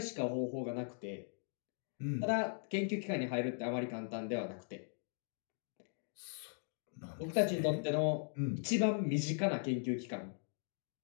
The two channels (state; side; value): silent; right; digital silence